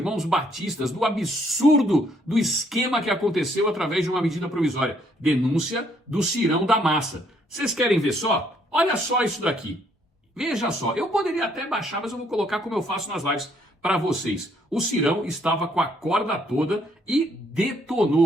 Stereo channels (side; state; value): both; normal; correlation 0.68